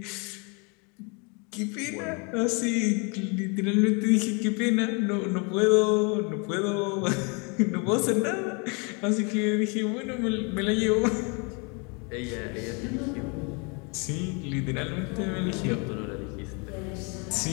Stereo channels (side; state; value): right; quieter; 32.8 dB